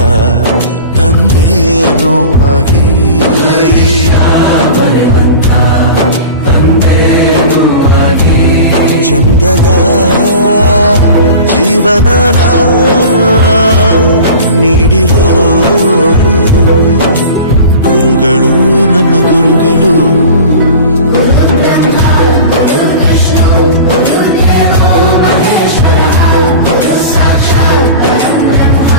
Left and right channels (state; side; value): inverted; both; correlation -0.37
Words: ತಂದೇನೋ ಆಗಿ ತಂದೇನೂ ಆಗಿ ಚಂದದ ಜೀವನನ ನೀಡಿರೋ ಗುರುಗಳು ನಮ್ಮ ಗುರುಗಳು